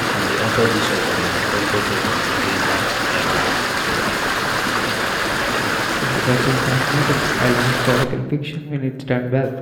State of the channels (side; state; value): both; identical; correlation 1.00